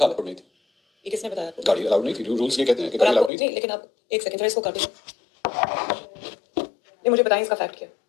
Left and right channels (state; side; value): drops out; right; at 3.3 s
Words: दे। ये किसने बताया आपको? गाड़ी अलाउड नहीं थी, रूल्स ये कहते हैं कि गाड़ी अलाउड नहीं। लेकिन आप एक सेकंड इसको काटिए। ये मुझे बताएं इसका फैक्ट क्या है?